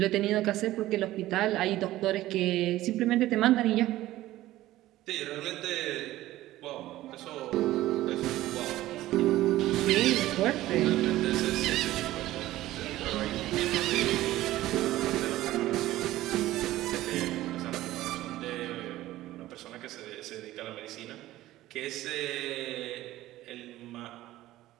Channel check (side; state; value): left; quieter; 15.7 dB